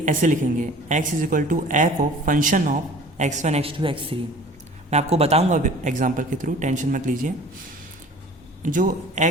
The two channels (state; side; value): normal; both; correlation 0.46